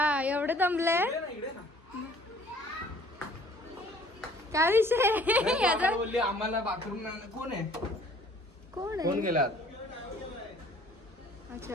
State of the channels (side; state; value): both; normal; correlation 0.54